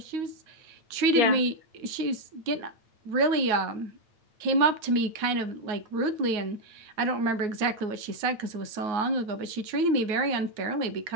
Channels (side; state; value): left; late; 9.4 ms